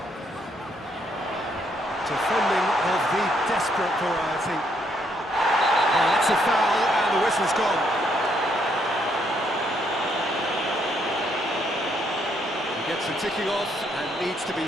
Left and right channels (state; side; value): normal; both; correlation 0.72